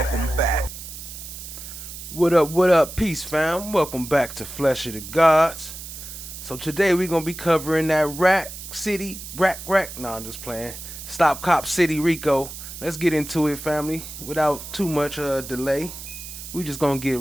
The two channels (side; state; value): right; noise; hiss, 11 dB below the sound